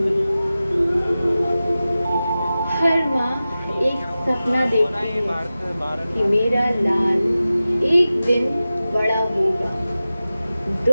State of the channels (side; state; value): both; inverted; correlation -0.95